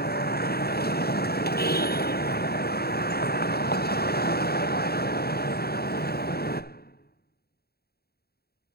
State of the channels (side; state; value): right; late; 0.46 ms